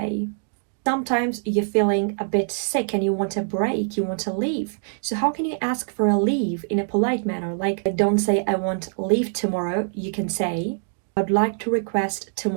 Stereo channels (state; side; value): silent; left; digital silence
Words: Sometimes you're feeling a bit sick and you want a break, you want to leave. So how can you ask for a leave in a polite manner? Like, don't say I want leave tomorrow. You can say, I'd like to request